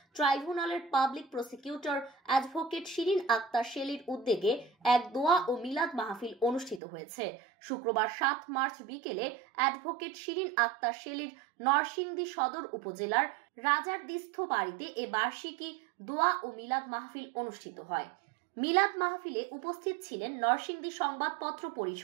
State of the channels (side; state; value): left; drops out; at 6.8 s